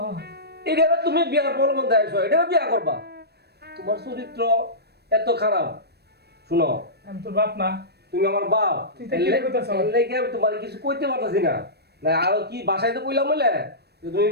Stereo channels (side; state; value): left; late; 0.47 ms